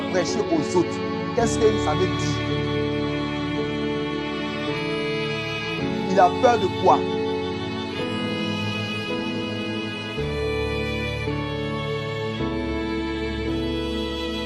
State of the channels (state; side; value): identical; both; correlation 1.00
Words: prêché aux autres. Qu'est-ce que ça veut dire? Il a peur de quoi?